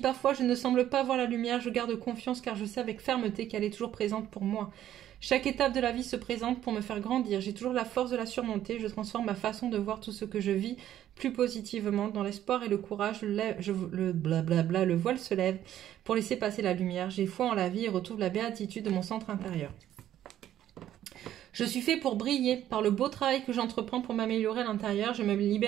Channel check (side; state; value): left; quieter; 11.8 dB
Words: je ne semble pas voir la lumière, je garde confiance car je sais avec fermeté qu'elle est toujours présente pour moi. Chaque étape de la vie se présente pour me faire grandir. J'ai toujours la force de la surmonter. Je transforme ma façon de voir tout ce que je vis plus positivement. Dans l'espoir et le courage, le voile se lève pour laisser passer la lumière. J'ai foi en la vie et retrouve la béatitude de mon centre intérieur. Je suis fait pour briller. Par le beau travail que j'entreprends pour m'améliorer à l'intérieur, je me